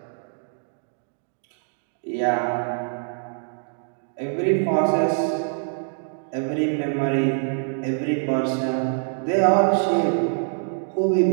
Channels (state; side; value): silent; left; digital silence